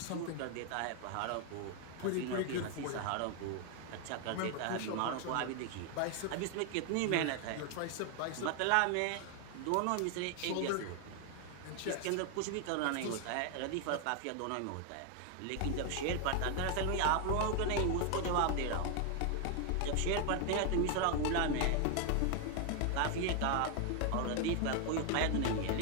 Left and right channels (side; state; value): both; different; correlation 0.01